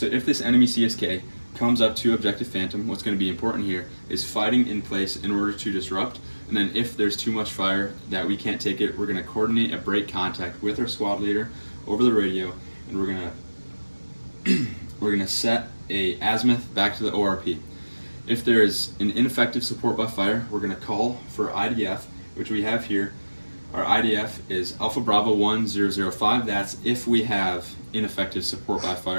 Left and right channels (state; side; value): inverted; both; correlation -1.00